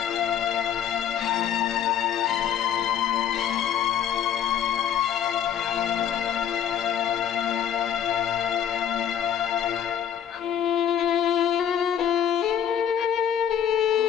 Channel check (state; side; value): quieter; right; 9.1 dB